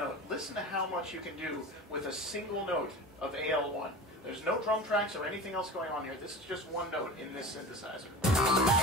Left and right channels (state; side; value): normal; both; correlation 0.33